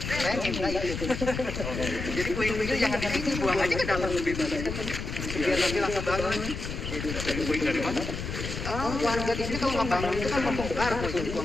saya minta itu. Jadi puing-puingnya jangan di sini, buang aja ke dalam lebih baik. Biar nanti langsung bangun. Puing dari mana? Oh, warga di sini kalau nggak bangun itu kan membongkar, puing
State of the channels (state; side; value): noise; left; rumble, 5 dB below the sound